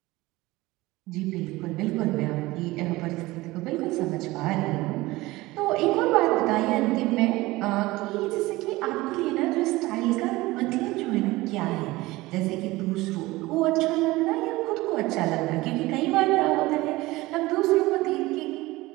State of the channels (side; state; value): left; quieter; 19.7 dB